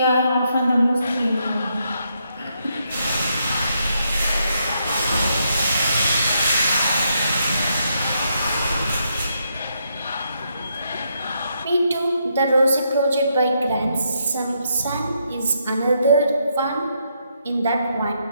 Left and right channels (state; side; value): inverted; both; correlation -0.78